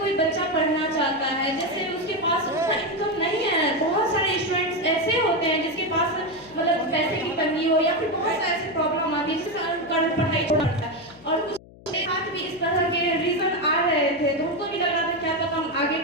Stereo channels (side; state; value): left; noise; hum, 22 dB below the sound